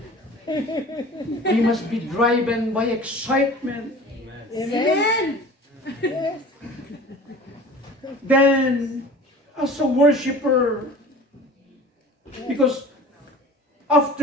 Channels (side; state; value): both; normal; correlation 0.41